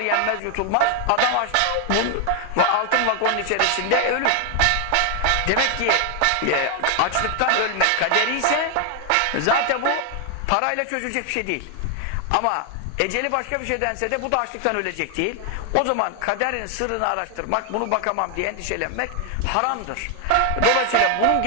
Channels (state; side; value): different; both; correlation 0.00